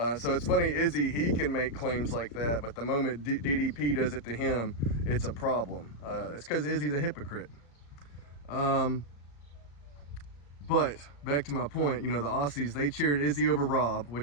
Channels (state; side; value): late; right; 35 ms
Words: So it's funny, Izzy, he can make claims like that, but the moment DDP does it to him, it's a problem. It's because Izzy's a hypocrite. But back to my point, the Aussies, they cheered Izzy over Rob,